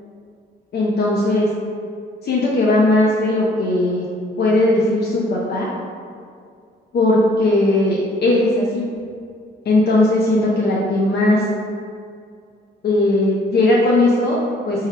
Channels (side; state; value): both; normal; correlation 0.61